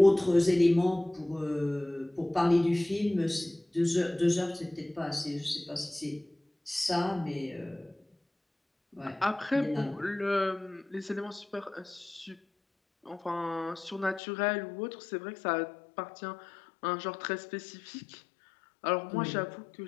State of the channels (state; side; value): drops out; right; at 14.2 s